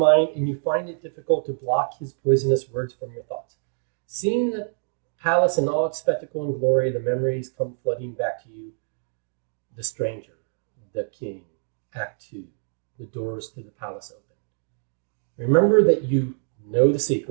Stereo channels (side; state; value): left; silent; digital silence